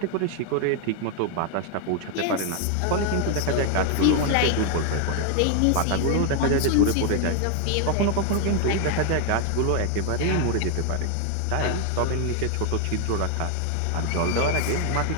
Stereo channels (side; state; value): both; different; correlation 0.00